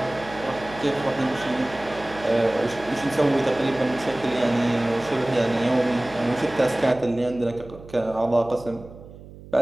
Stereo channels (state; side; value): noise; right; hum, 18 dB below the sound